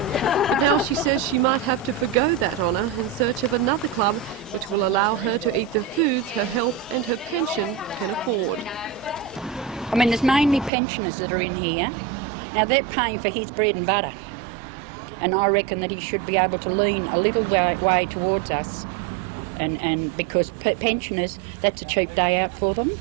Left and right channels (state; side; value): drops out; left; at 10.7 s